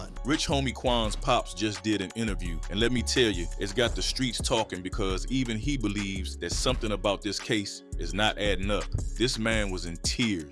Rich Homie Quan's pops just did an interview, and let me tell you, it's got the streets talking because even he believes that something about this case is not adding up. This man was in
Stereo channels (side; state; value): both; identical; correlation 1.00